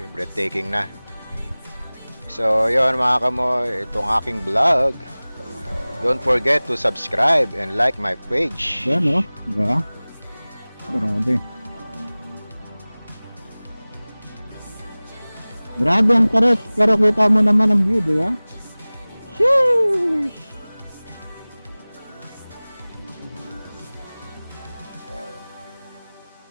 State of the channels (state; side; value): inverted; both; correlation -1.00